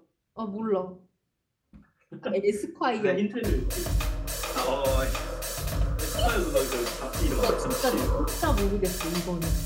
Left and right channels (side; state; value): both; identical; correlation 1.00